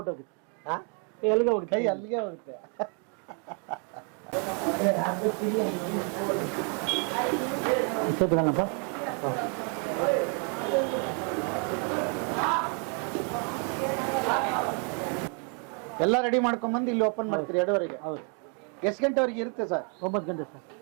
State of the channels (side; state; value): left; quieter; 38.5 dB